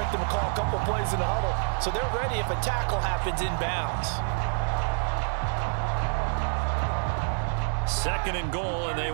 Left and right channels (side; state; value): left; silent; digital silence